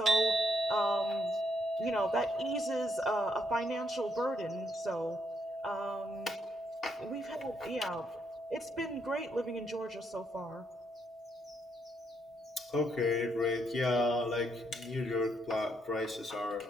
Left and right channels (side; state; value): both; normal; correlation 0.75